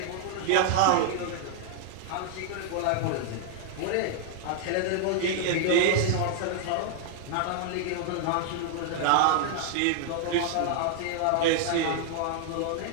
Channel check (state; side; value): different; both; correlation 0.00